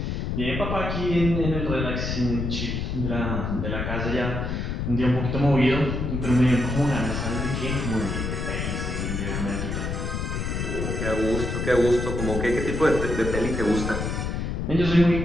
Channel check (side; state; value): left; noise; rumble, 2 dB below the sound